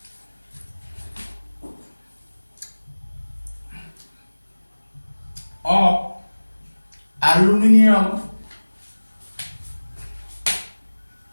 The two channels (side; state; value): both; inverted; correlation -1.00